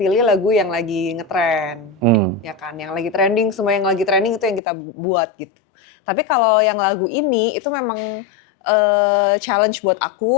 lagu yang lagi ngetren, ya kan? Yang lagi trending, semua yang lagi trending itu yang kita buat gitu. Tapi kalau yang lagu ini itu memang challenge buat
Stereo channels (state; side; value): drops out; right; at 4.6 s